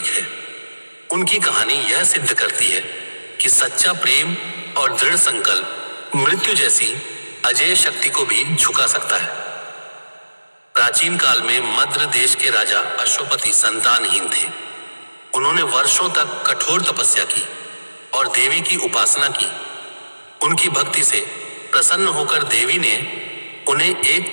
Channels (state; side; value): inverted; both; correlation -1.00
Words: है। उनकी कहानी यह सिद्ध करती है कि सच्चा प्रेम और दृढ़ संकल्प मृत्यु जैसी अजेय शक्ति को भी झुका सकता है। प्राचीन काल में मद्र देश के राजा अश्वपति संतानहीन थे। उन्होंने वर्षों तक कठोर तपस्या की और देवी की उपासना की। उनकी भक्ति से प्रसन्न होकर देवी ने उन्हें